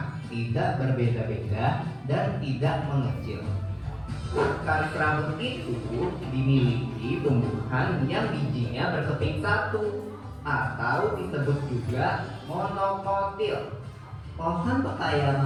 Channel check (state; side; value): identical; both; correlation 1.00